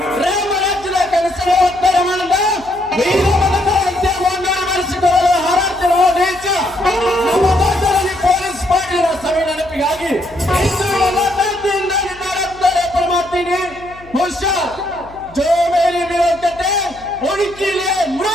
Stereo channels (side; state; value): left; noise; hum, 22 dB below the sound